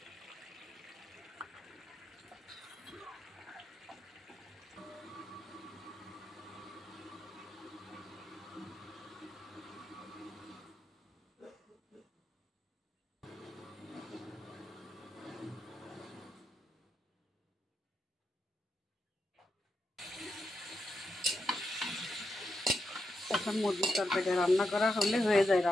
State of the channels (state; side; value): normal; both; correlation 0.85